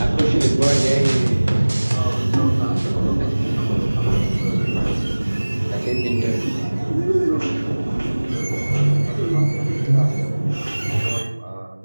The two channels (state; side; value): inverted; both; correlation -1.00